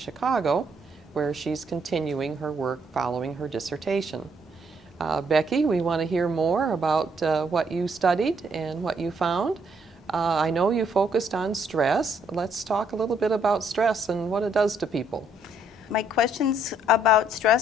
where she's continuing her work following her dissertation. Becky, we want to hear more about what you studied and what you found. I know you focused on stress. Let's talk a little bit about stress and what it does to people. My questions about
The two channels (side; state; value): both; normal; correlation 0.69